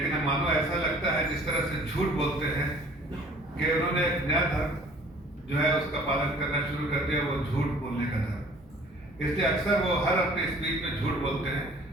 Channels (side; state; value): both; normal; correlation 0.53